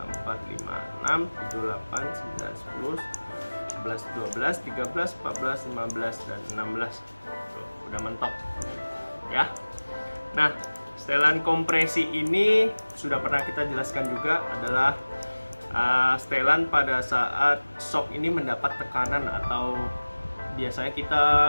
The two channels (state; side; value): inverted; both; correlation -1.00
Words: 4 5 6 7 8 9 10 11 12 13 14 15 dan 16. Tuh, udah mentok. Ya. Nah, setelan kompresi ini sudah pernah kita jelaskan juga adalah setelan pada saat shock ini mendapat tekanan atau biasanya